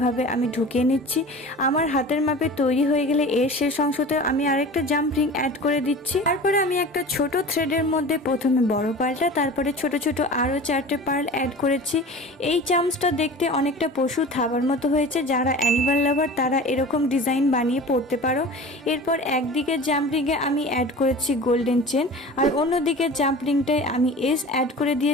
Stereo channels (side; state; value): both; normal; correlation 0.38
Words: আমি ঢুকিয়ে নিচ্ছি। আমার হাতের মাপে তৈরি হয়ে গেলে এর শেষ অংশতে আমি আরেকটা জাম্প রিং অ্যাড করে দিচ্ছি। তারপরে আমি একটা ছোট থ্রেডের মধ্যে প্রথমে বড় পার্লটা, তারপরে ছোট ছোট আরও 4টে পার্ল অ্যাড করেছি। এই চামচটা দেখতে অনেকটা পশু থাবার মতো হয়েছে, যারা অ্যানিমাল লাভার তারা এরকম ডিজাইন বানিয়ে পরতে পারো। এরপর একদিকে জাম্প রিংয়ে আমি অ্যাড করেছি গোল্ডেন চেন, আর অন্যদিকে জাম্প রিংটায় আমি এস অ্যাড করে